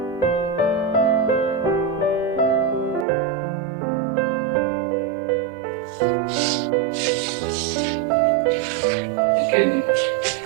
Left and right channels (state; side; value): drops out; left; at 3.1 s